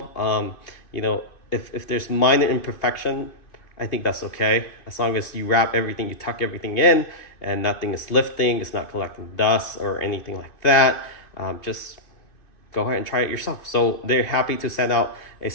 You know, if there's minor imperfection, I think that's okay. As long as you wrap everything, you tuck everything in, and nothing is lifting, it's not collecting dust or anything like that. Just go ahead and try it yourself. So they're happy to send out a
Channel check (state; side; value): late; right; 2.5 ms